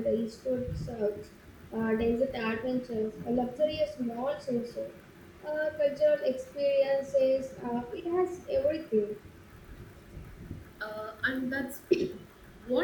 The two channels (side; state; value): both; identical; correlation 1.00